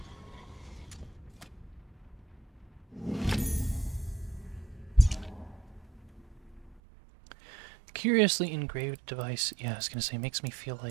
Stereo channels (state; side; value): drops out; left; at 6.8 s